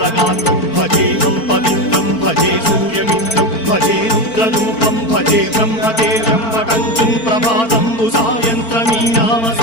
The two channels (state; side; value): late; right; 4.5 ms